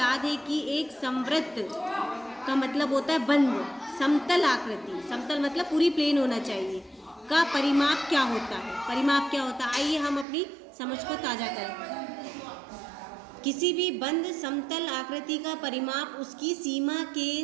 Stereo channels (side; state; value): left; drops out; at 10.2 s